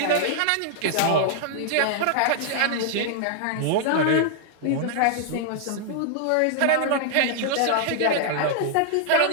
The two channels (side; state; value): both; different; correlation -0.01